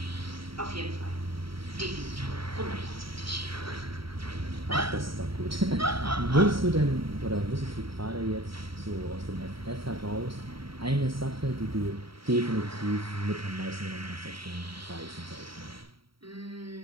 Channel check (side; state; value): left; late; 0.75 ms